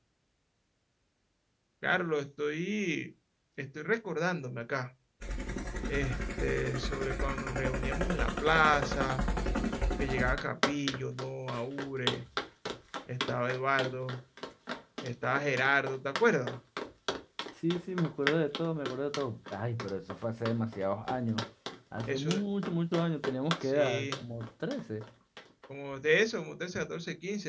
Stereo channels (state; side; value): identical; both; correlation 1.00